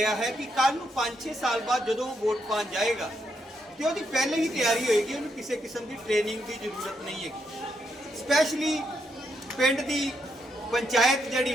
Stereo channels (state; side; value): normal; both; correlation 0.79